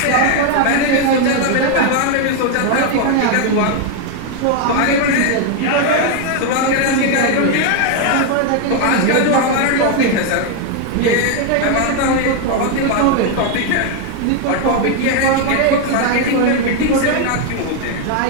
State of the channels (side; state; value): both; different; correlation 0.01